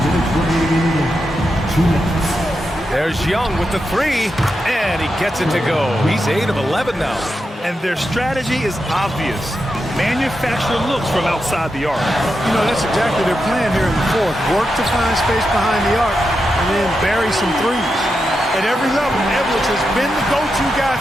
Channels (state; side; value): normal; both; correlation 0.87